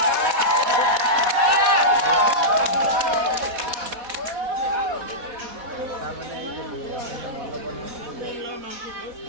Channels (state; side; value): late; left; 4.1 ms